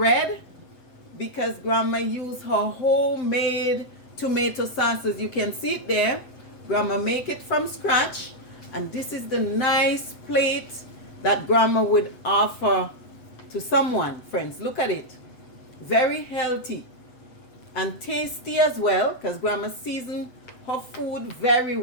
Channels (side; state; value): right; late; 7.9 ms